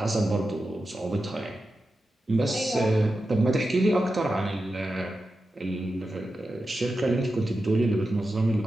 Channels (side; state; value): both; normal; correlation 0.91